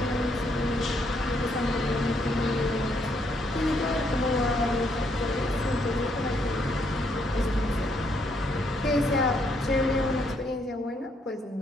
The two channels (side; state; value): both; normal; correlation 0.73